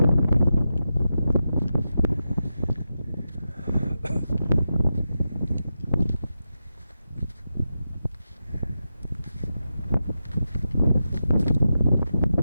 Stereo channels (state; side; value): inverted; both; correlation -0.89